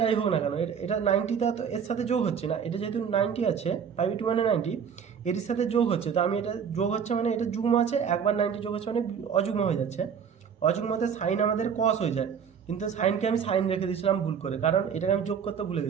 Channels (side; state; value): left; quieter; 7.2 dB